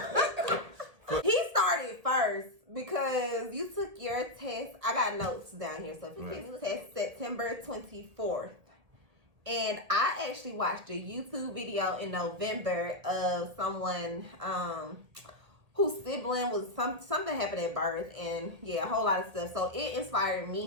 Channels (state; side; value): late; left; 1.8 ms